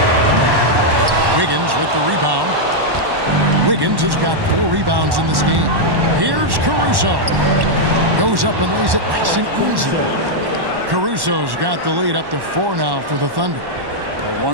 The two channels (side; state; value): left; late; 1.1 ms